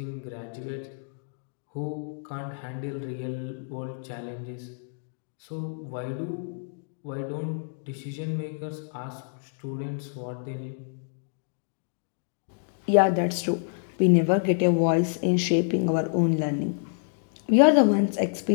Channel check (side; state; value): right; silent; digital silence